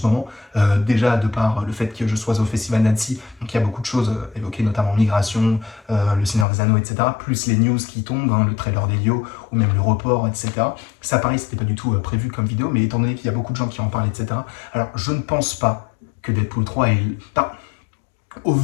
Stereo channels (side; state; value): right; drops out; at 6.5 s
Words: moment. Déjà, de par le fait que je sois au Festival d'Annecy, donc il y a beaucoup de choses évoquées, notamment migration, le Seigneur des Anneaux, etc. Plus les news qui tombent, hein, le trailer d'Elio, ou même le report, etc. Ça, pareil, c'était pas du tout prévu comme vidéo, mais étant donné qu'il y a beaucoup de gens qui en parlent, etc. Alors, je ne pense pas que Deadpool 3 est... Enfin, au